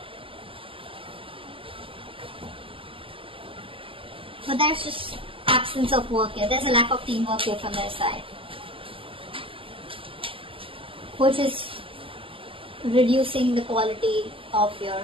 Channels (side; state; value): left; late; 0.26 ms